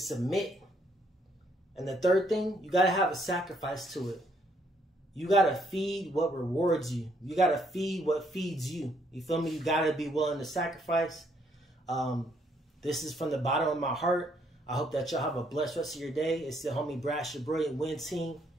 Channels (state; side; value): normal; both; correlation 0.70